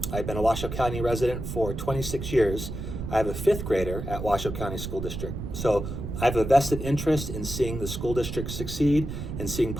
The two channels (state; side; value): noise; right; rumble, 6 dB below the sound